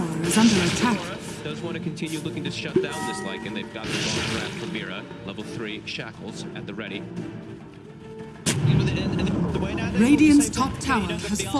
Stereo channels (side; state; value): both; identical; correlation 1.00